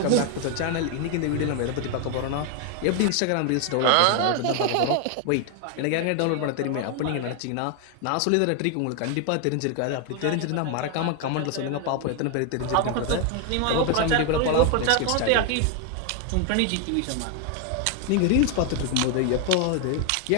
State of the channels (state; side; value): different; both; correlation 0.01